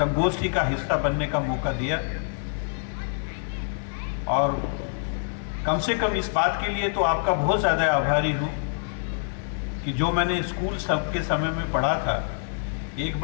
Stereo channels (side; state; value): right; silent; digital silence